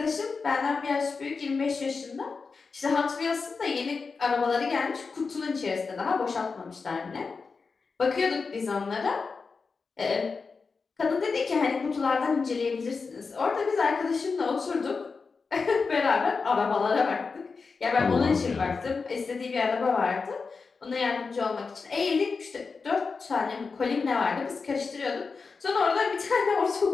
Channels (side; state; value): right; quieter; 4.7 dB